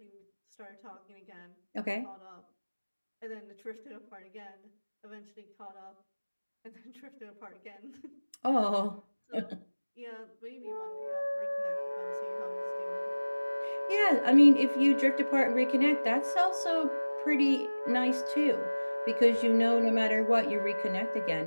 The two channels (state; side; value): inverted; both; correlation -1.00